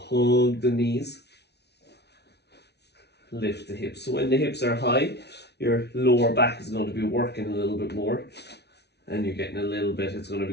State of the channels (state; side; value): late; right; 0.49 ms